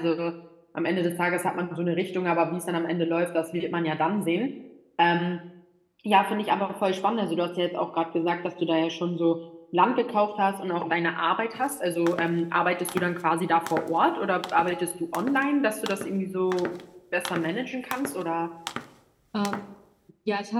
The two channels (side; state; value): both; identical; correlation 1.00